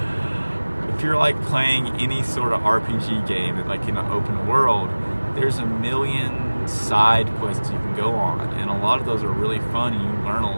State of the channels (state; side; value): inverted; both; correlation -1.00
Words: if you're like playing any sort of RPG game that like in an open world, there's a million side quests you can go on, and a lot of those are really fun and you learn